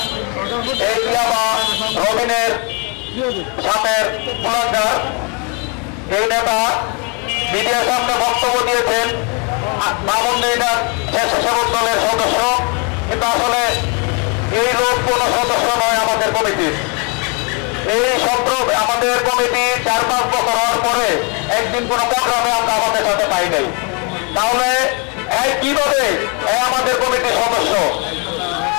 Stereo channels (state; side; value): quieter; right; 33.7 dB